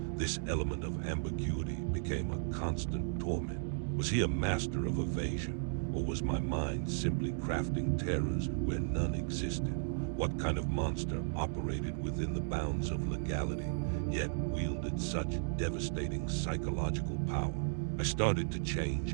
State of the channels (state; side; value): silent; left; digital silence